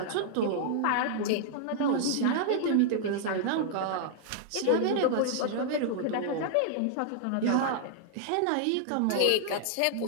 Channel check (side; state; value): both; different; correlation -0.01